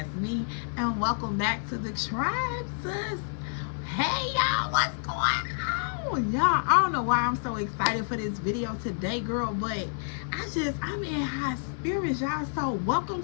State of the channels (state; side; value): silent; right; digital silence